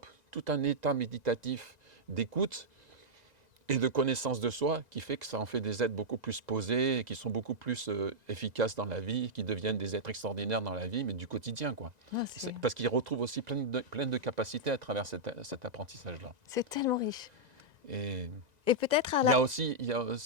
tout un état méditatif d'écoute et de connaissance de soi qui fait que ça en fait des êtres beaucoup plus posés, et qui sont beaucoup plus efficaces dans la vie, qui deviennent des êtres extraordinaires dans la vie, mais du quotidien, quoi. Ah, Parce qu'ils retrouvent aussi plein de capacités à travers cet apprentissage-là. c'est tellement riche. Et Et peut-être à il y la... a aussi,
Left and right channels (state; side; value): late; left; 2.0 ms